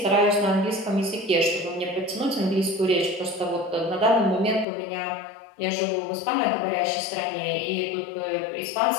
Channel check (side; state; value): right; drops out; at 4.7 s